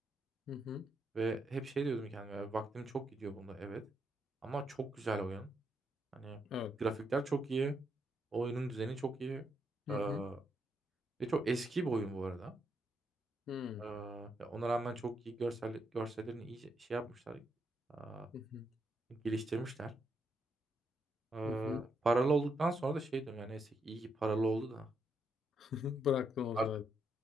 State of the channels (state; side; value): normal; both; correlation 0.78